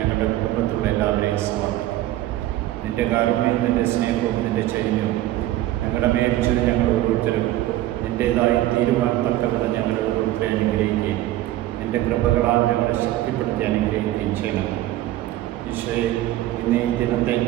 കുടുംബത്തിലുള്ള എല്ലാവരെയും സമർപ്പിക്കും. നിൻ്റെ കാരുണ്യവും നിൻ്റെ സ്നേഹവും നിൻ്റെ ചൈന്യവും ഞങ്ങളുടെ മേൽച്ചത് ഞങ്ങൾ ഓരോരുത്തരും നിൻ്റേതായി തീരുവാൻ തക്കവിധം ഞങ്ങളുടെ ഓരോരുത്തരെ അനുഗ്രഹിക്കുകയും നിൻ്റെ കൃപകളാൽ ഞങ്ങളെ ശക്തിപ്പെടുത്തി അനുഗ്രഹിക്കുകയും ചെയ്യണം. ഈശോയെ, ഇന്ന് ഈ ദിനത്തെ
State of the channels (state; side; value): quieter; left; 14.9 dB